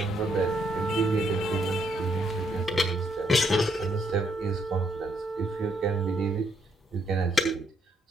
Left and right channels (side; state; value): both; normal; correlation 0.74